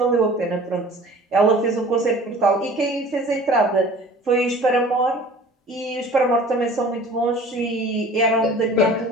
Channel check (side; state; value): both; normal; correlation 0.45